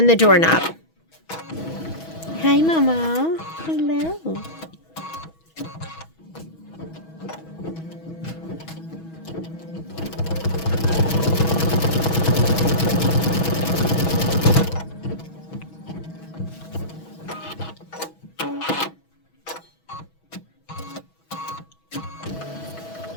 the doorknob. Hi, Mama. Hello.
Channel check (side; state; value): right; late; 6.2 ms